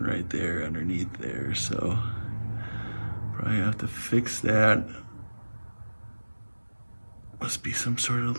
there underneath there, so probably have to fix that. Must be some sort of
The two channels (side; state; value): both; inverted; correlation -1.00